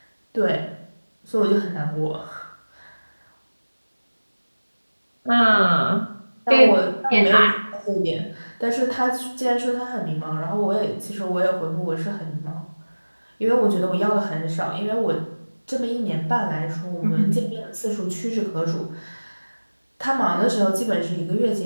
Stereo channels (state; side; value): inverted; both; correlation -1.00